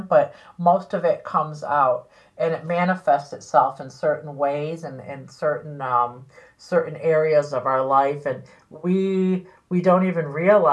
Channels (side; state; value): both; identical; correlation 1.00